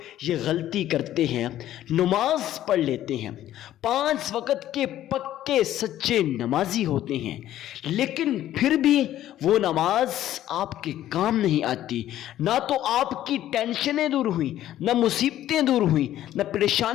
یہ غلطی کرتے ہیں، نماز پڑھ لیتے ہیں، 5 وقت کے پکے سچے نمازی ہوتے ہیں، لیکن پھر بھی وہ نماز آپ کے کام نہیں آتی۔ نہ تو آپ کی ٹینشنیں دور ہوئیں، نہ مصیبتیں دور ہوئیں، نہ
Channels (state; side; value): quieter; right; 12.8 dB